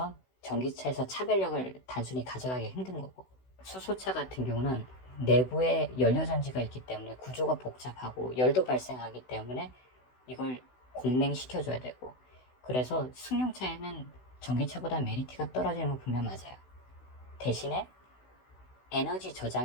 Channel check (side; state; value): right; late; 16 ms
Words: 전기차에서 차별력을 단순히 가져가기 힘든 거고, 수소차 같은 경우는 내부에 연료전지가 있기 때문에 구조가 복잡하고 열도 발생하기 때문에 이걸 공냉시켜줘야 되고, 그래서 승용차에는 전기차보다 메리트가 떨어지는 건 분명 맞아요. 대신에 에너지